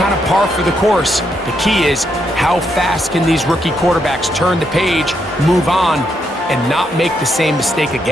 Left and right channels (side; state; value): both; normal; correlation 0.78